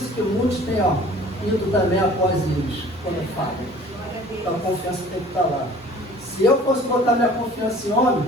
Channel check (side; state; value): both; normal; correlation 0.49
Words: que muitos têm, ido também após eles, quando falam. Então a confiança tem que estar lá. Se eu fosse botar minha confiança em homem,